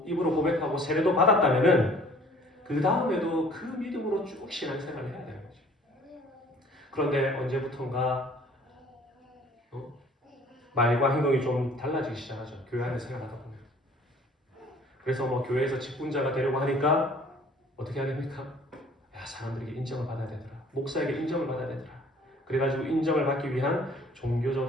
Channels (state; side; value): normal; both; correlation 0.53